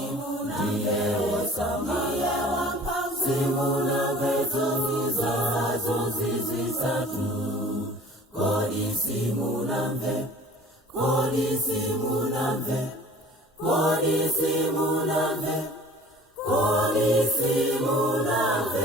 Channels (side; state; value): both; normal; correlation 0.47